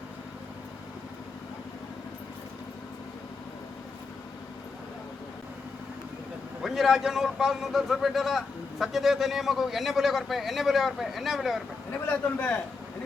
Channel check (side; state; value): right; quieter; 4.3 dB